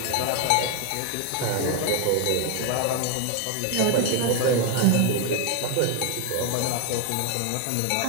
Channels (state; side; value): different; both; correlation 0.01